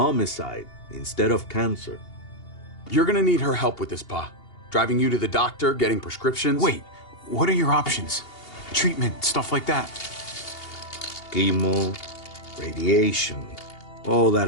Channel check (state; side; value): late; right; 2.8 ms